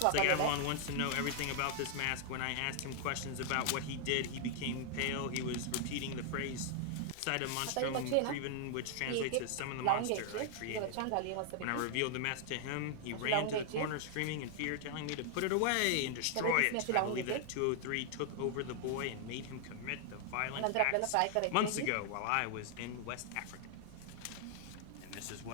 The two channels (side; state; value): both; different; correlation 0.00